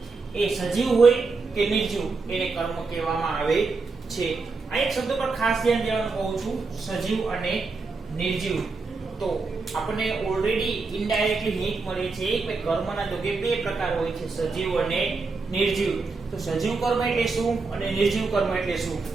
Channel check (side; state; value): left; quieter; 4.1 dB